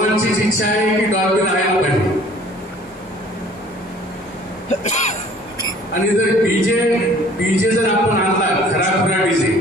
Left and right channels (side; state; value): both; normal; correlation 0.53